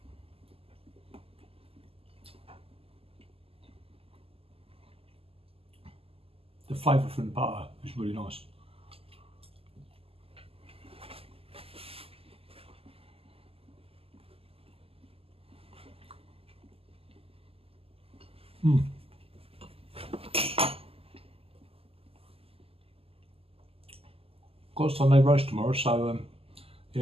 The flavour from the butter is really nice. Got a Sunday roast tomorrow, so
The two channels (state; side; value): late; left; 0.28 ms